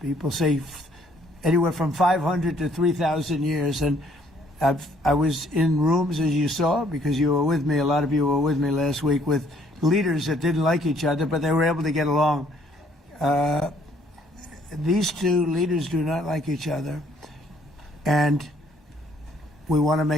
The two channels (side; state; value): both; normal; correlation 0.64